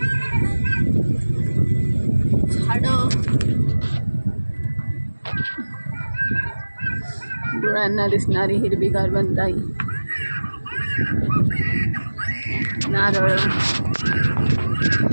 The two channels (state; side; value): inverted; both; correlation -1.00